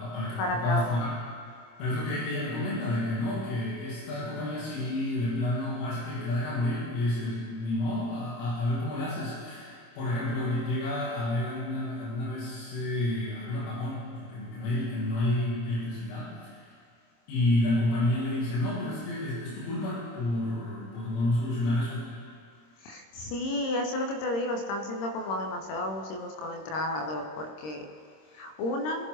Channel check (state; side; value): late; right; 26 ms